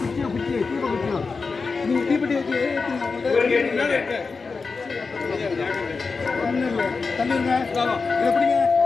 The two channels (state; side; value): quieter; right; 4.5 dB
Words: குச்சியா குச்சியா தீப குச்சியா நீங்க தீபத்தை ஏத்துங்க. தள்ளிருங்க, இதை பிடிங்க.